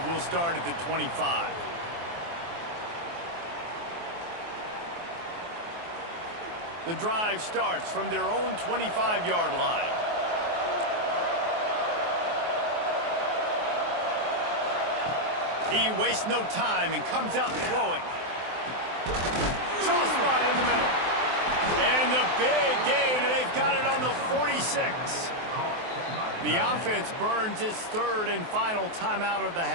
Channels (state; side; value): late; left; 23 ms